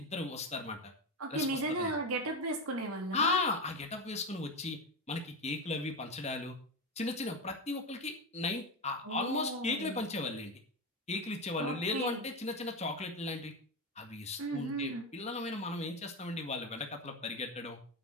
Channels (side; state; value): both; normal; correlation 0.16